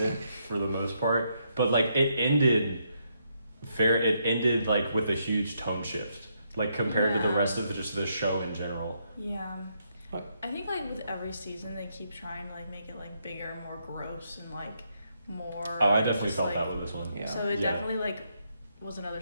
for the most part, but like it ended like with a huge tone shift, like compared to the Yeah. rest of just the show in general. Yeah. What? I think like with every season they keep trying to like make it like bigger, more gross, and like more. Oh, I definitely just, felt like, that with this one. Yeah. So it Yeah. definitely like was another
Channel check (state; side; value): inverted; both; correlation -0.77